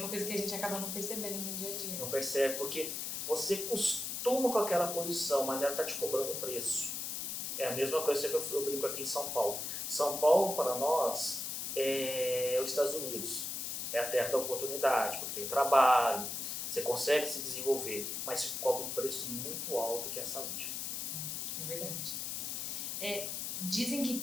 coisa que a gente acaba não percebendo no dia a dia. Não percebe, porque você costuma com aquela posição, mas ela está te cobrando um preço. É a mesma coisa que eu brinco aqui em São Paulo. São Paulo, para nós, é os Estados Unidos. É a terra da oportunidade, porque tem trabalho, você consegue se desenvolver, mas se cobra um preço muito alto que é a saúde. É verdade. Dizem que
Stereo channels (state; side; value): noise; left; hiss, 3 dB below the sound